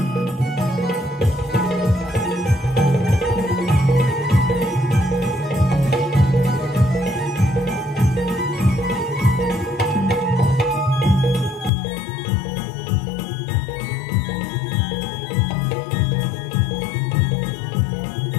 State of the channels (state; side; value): drops out; right; at 11.7 s